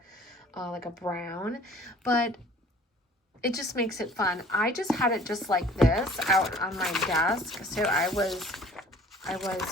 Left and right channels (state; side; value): normal; both; correlation 0.51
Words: like a brown, but it just makes it fun. I just had it just like this out on my desk. So I was